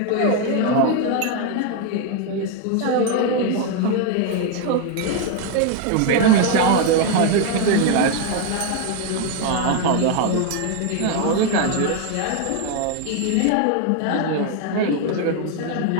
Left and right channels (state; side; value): different; both; correlation 0.01